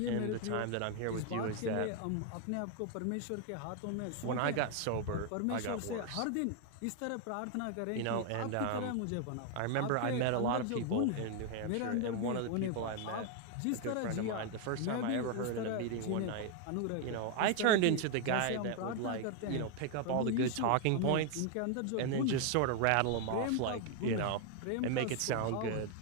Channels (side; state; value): both; different; correlation 0.01